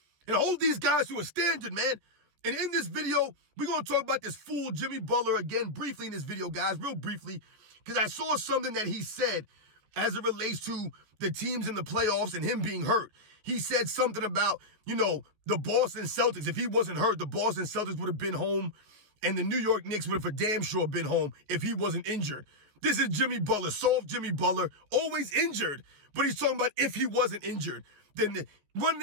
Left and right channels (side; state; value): left; late; 14 ms